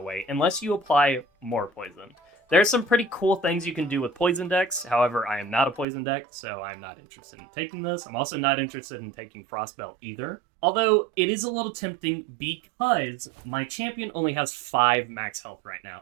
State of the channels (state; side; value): drops out; left; at 5.9 s